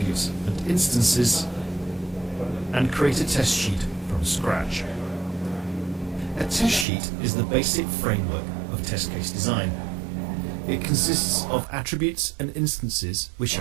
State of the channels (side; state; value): left; drops out; at 6.9 s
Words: and instances, and create a test sheet from scratch. A test sheet is the basic framework of test case design. It consists of attributes and instances which